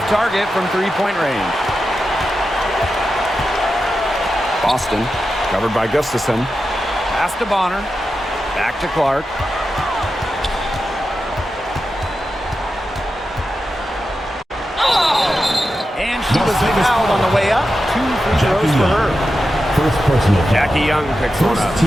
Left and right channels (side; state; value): both; normal; correlation 0.90